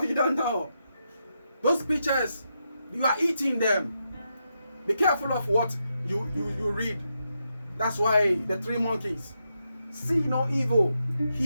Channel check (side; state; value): both; inverted; correlation -0.84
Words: you don't know. Those pictures, you are eating them. Be careful of what you read. That's why the 3 monkeys: see no evil,